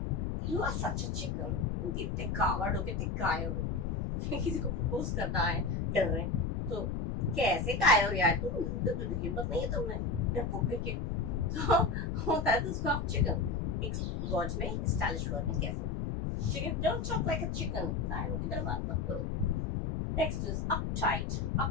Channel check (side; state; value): left; noise; rumble, 1 dB below the sound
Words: You are such a chicken। तुम कितने कावर्ड हो, कितने कायर हो। किसी को प्रपोज करना है, डर रहे तो कैसे कायर हो यार तुम, हिम्मत नहीं है तुम्हें डरपोक करके। तो होता है तो उसको आप चिकन एक वर्ड में, स्टाइलिश वर्ड में कह सकते हैं। ठीक है, don't talk like a chicken, कायरों की तरह बात मत करो। Next is uptight.